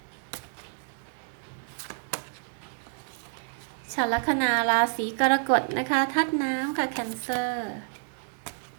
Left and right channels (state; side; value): silent; left; 59 dB below the other